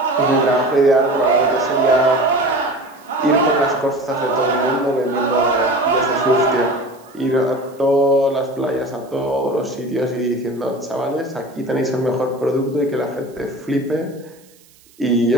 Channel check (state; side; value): noise; right; hiss, 29 dB below the sound